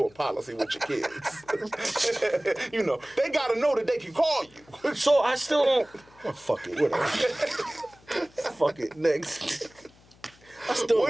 policy with your kids. They got to know that they can call you." So I still don't. Oh, fuck it, whatever. Fuck it, next.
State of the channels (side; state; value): left; noise; hum, 27 dB below the sound